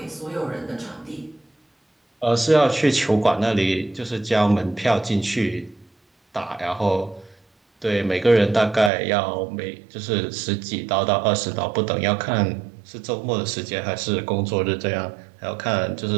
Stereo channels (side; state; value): left; drops out; at 8.9 s